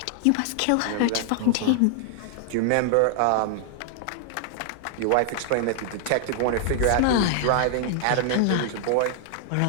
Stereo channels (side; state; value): both; different; correlation 0.00